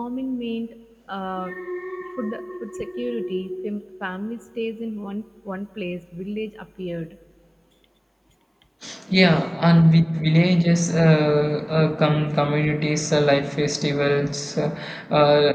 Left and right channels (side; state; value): both; identical; correlation 1.00